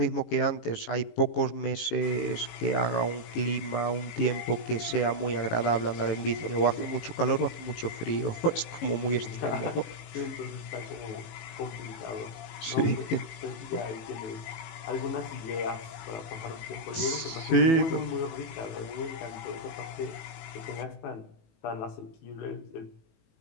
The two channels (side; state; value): right; late; 18 ms